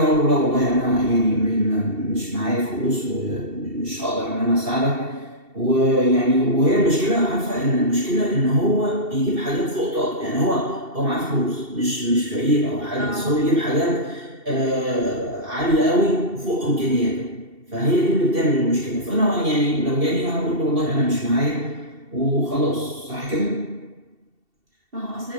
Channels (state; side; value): late; left; 2.7 ms